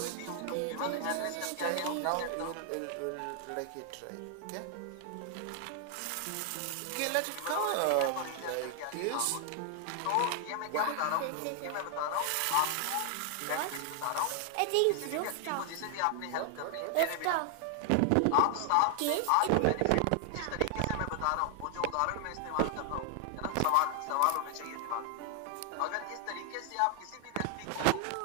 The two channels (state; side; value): different; both; correlation 0.00